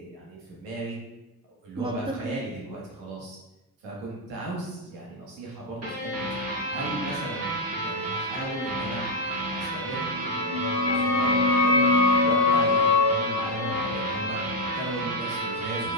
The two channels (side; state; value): both; normal; correlation 0.01